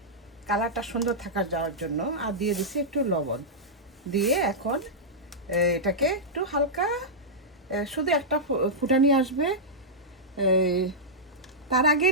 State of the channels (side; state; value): both; normal; correlation -0.11